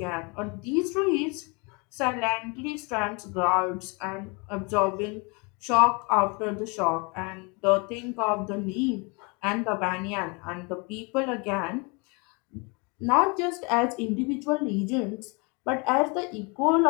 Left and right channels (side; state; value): right; quieter; 30.7 dB